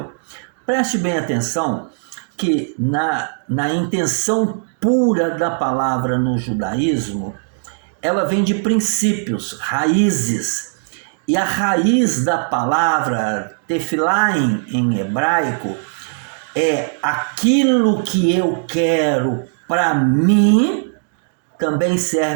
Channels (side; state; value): left; silent; digital silence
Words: Preste bem atenção que na intenção pura da palavra no judaísmo, ela vem de princípios, raízes. E a raiz da palavra tefilaim em hebraico é aquilo que eu quero para mim também